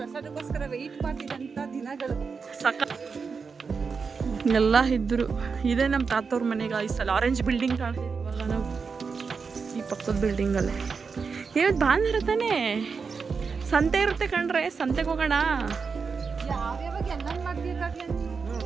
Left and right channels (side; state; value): left; quieter; 5.3 dB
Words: ವೆಯ್ಟ್ ಮಾಡ್ತಿದ್ದಂಥ ದಿನಗಳು. ಸಕ ಎಲ್ಲ ಇದ್ರು. ಇದೇ ನಮ್ಮ ತಾತವ್ರ ಮನೆ ಗಾಯ್ಸ್. ಅಲ್ಲಿ ಆರೆಂಜ್ ಬಿಲ್ಡಿಂಗ್ ಕಾಣ್ತಿದ್ವಿ ಇವಾಗ ನಾವು, ಈ ಪಕ್ಕದ ಬಿಲ್ಡಿಂಗಲ್ಲೇ. ಇವತ್ತು ಭಾನುವಾರ ತಾನೇ, ಸಂತೆ ಇರುತ್ತೆ ಕಣ್ರೆ, ಸಂತೆಗೆ ಹೋಗೋಣ. ಯಾವ್ಯಾವಾಗ ಎಲ್ಲ ಮಾಡ್ಬೇಕಾಗ್ಲಿ